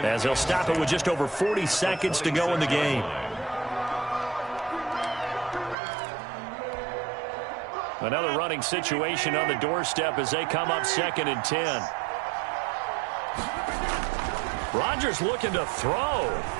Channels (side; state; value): left; drops out; at 5.8 s